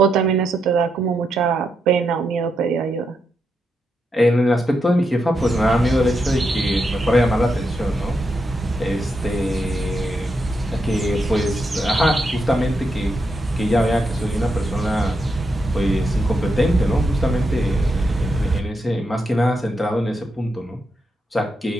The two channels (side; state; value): both; normal; correlation 0.83